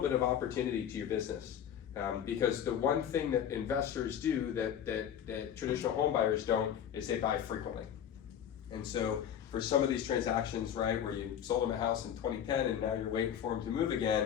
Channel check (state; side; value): quieter; right; 9.3 dB